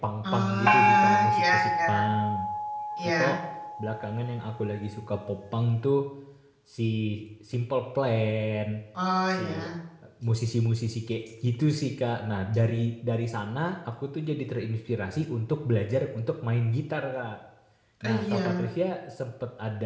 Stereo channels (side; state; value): both; identical; correlation 1.00